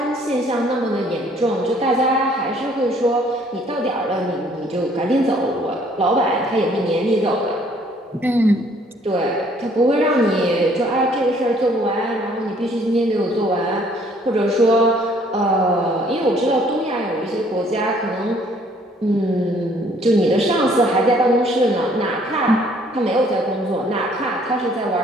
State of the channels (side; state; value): both; normal; correlation 0.61